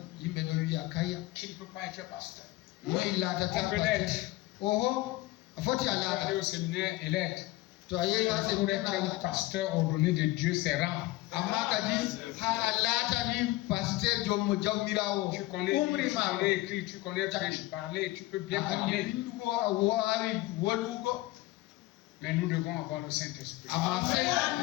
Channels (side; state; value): right; quieter; 18.9 dB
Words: qui ne peut pas être pasteur. On peut l'être. Il faut aller au séminaire et l'être. Pour être un pasteur ordonné de Dieu, c'est rare. Tu connais écrire, tu connais parler, tu peux bien parler. Mais nous devons avoir le Saint-Esprit.